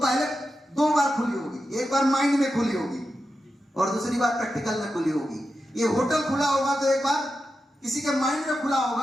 2 बार खुली होगी। एक बार माइंड में खुली होगी और दूसरी बार प्रैक्टिकल में खुली होगी। ये होटल खुला होगा तो एक बार किसी के माइंड में खुला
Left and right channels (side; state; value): both; normal; correlation 0.89